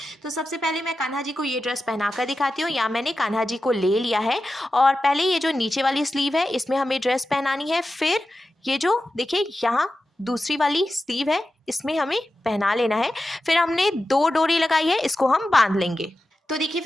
तो सबसे पहले मैं कान्हा जी को ये ड्रेस पहनाकर दिखाती हूँ। यहाँ मैंने कान्हा जी को ले लिया है और पहले ये जो नीचे वाली स्लीव है इसमें हमें ड्रेस पहनानी है। फिर ये जो देखिए यहाँ दूसरी वाली स्लीव है इसमें हमें पहना लेना है। फिर हमने 2 डोरी लगाई है, इसको हम बांध लेंगे। तो देखिए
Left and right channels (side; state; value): both; normal; correlation 0.92